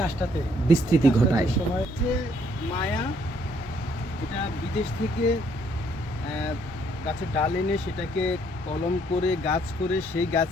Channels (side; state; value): both; normal; correlation 0.67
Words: বিস্তৃতি ঘটায়। মায়া এটা বিদেশ থেকে গাছের ডাল এনে সেটাকে কলম করে গাছ করে সেই